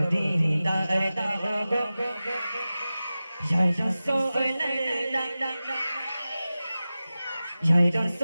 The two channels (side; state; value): both; inverted; correlation -0.95